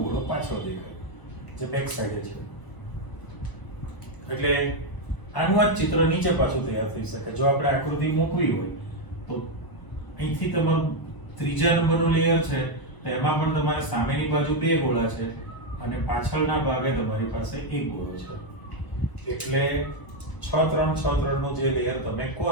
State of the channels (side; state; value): right; late; 1.0 ms